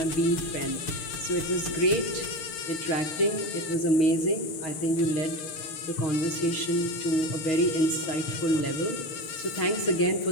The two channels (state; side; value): late; right; 6.7 ms